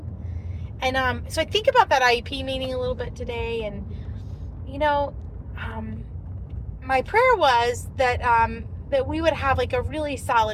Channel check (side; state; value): both; identical; correlation 1.00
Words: And so I think about that IEP meeting a little bit today, and you know, my prayer was that that we would have like a really